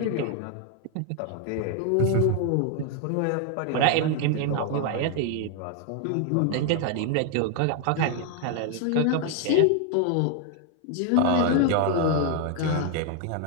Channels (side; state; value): both; different; correlation 0.00